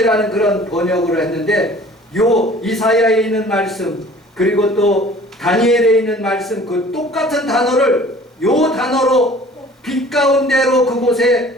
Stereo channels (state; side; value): normal; both; correlation 0.49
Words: 그런 번역을 했는데, 요 이사야에 있는 말씀 그리고 또 다니엘에 있는 말씀, 그 똑같은 단어를 요 단어로 빛 가운데로 그곳에